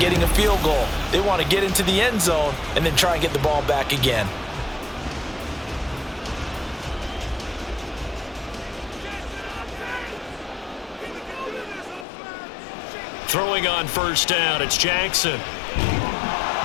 a field goal. They want to get into the end zone and then try and get the ball back again. Throwing on 1st down, it's Jackson.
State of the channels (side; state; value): right; drops out; at 12.1 s